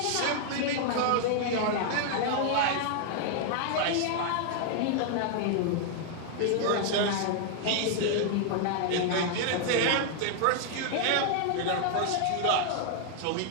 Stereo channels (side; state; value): both; different; correlation 0.00